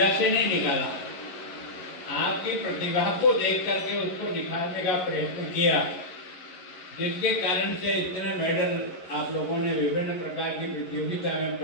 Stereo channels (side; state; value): right; late; 11 ms